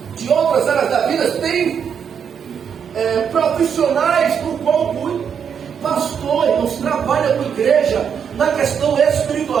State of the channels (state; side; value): quieter; left; 7.4 dB